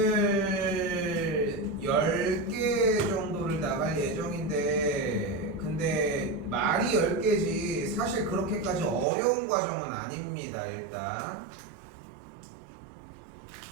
오늘 10개 정도를 나갈 예정인데 근데 말이 10개지 사실 그렇게까지 어려운 과정은 아닙니다. 일단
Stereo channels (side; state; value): left; drops out; at 9.1 s